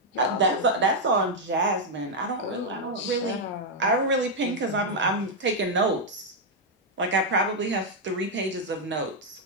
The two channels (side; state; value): both; normal; correlation -0.01